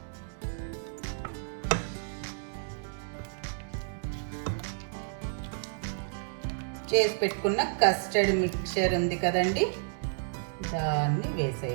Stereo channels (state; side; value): silent; left; 57 dB below the other